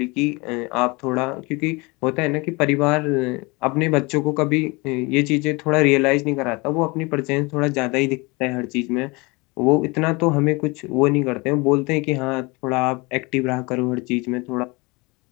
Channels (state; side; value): quieter; right; 26.2 dB